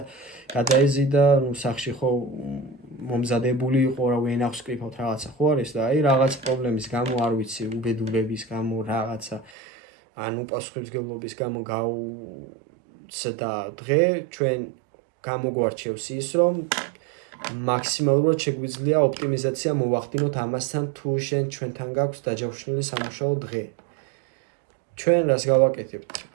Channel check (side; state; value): left; drops out; at 9.5 s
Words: გადაეზიდა, ნუ სახში ხო მომზადებული იყო, რა ვენახს კრიფავთ რაღაცა ხო არის და აი რაღაც პრობლემის გამო არ ვიცი, უბედურების გამო რაღაცა ან უპასუხისმგებლობის გამო და დღე ჩვენ გამოგვარჩევს ის, რომ მაქსიმალურად შეგვიძლია ოპტიმიზაცია მოვახდინოთ ამასთან, თუ ჩვენთან გაქვს დაჯავშნილი სამუშაო დღე. ჩვენ რას გავაკეთებთ?